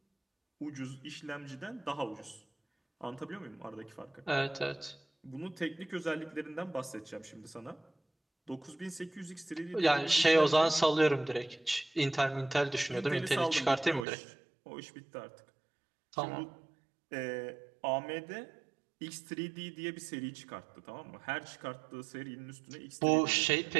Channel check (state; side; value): drops out; left; at 14.1 s